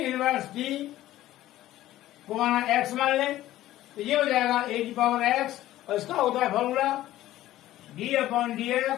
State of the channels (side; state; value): right; quieter; 14.6 dB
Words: टी को माना x मान लें, तो ये हो जाएगा ए की पावर x और इसका होता है फॉर्मूला